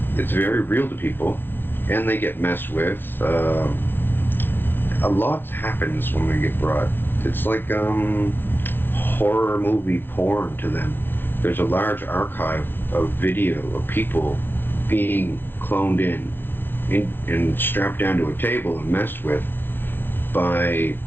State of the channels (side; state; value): right; late; 0.099 ms